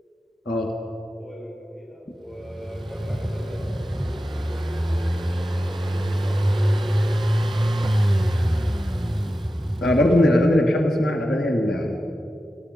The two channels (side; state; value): both; normal; correlation 0.92